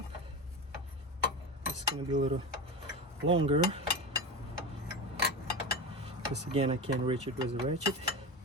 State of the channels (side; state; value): both; normal; correlation 0.23